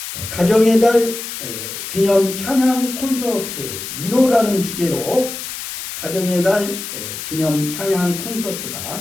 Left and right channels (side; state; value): left; noise; hiss, 8 dB below the sound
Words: 가정의 달 기념 찬양 콘서트 위로라는 주제로 가정의 달 기념 찬양